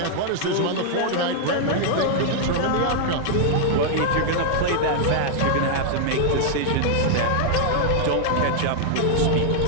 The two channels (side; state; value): both; different; correlation -0.01